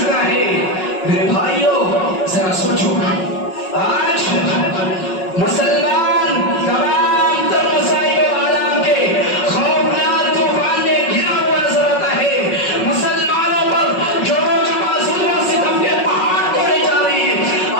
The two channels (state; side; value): late; right; 5.4 ms